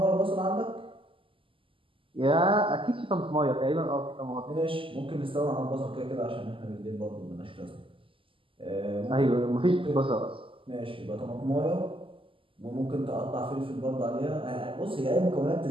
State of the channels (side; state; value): left; late; 0.25 ms